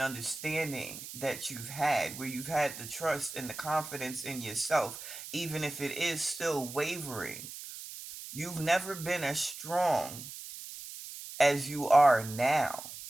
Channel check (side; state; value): right; noise; hiss, 11 dB below the sound